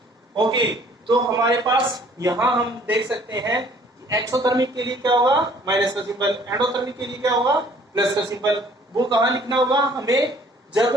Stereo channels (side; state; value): both; normal; correlation 0.57